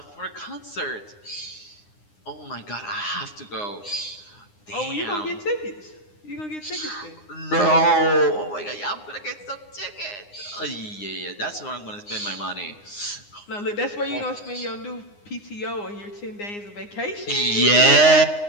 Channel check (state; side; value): late; right; 9.8 ms